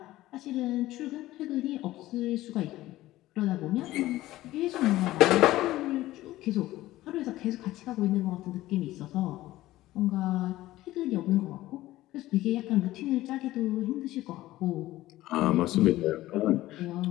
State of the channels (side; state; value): right; quieter; 16.2 dB